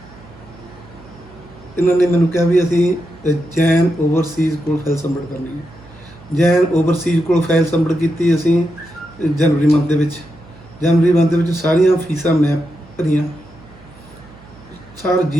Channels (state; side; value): noise; right; hum, 23 dB below the sound